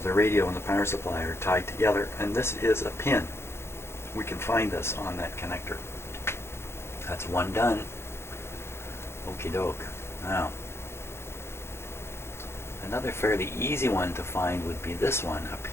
the radio and the power supply are tied together, and this is a pin. We can find this on that connector. That's one done. Okie doke. Now, another fairly easy one to find would be this one up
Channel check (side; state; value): right; late; 0.12 ms